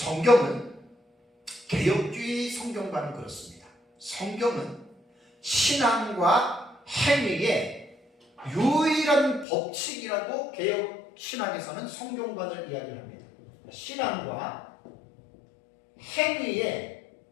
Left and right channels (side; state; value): right; drops out; at 9.5 s